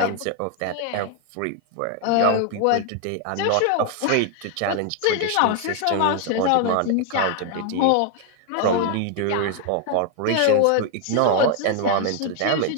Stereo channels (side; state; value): both; different; correlation 0.00